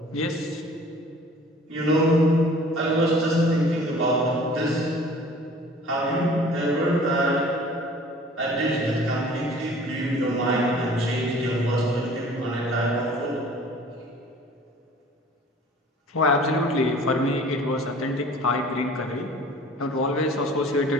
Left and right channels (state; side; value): normal; both; correlation 0.48